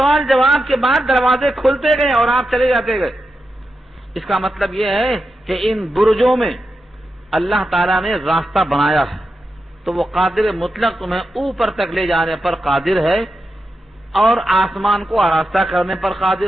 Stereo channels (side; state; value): both; normal; correlation 0.89